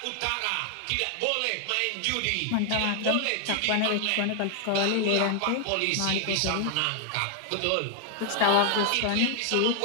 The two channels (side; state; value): both; different; correlation 0.00